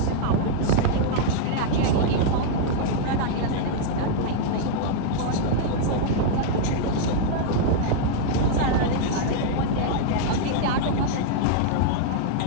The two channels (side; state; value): both; different; correlation -0.01